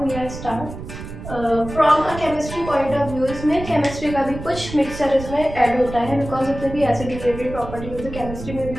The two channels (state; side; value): noise; right; rumble, 11 dB below the sound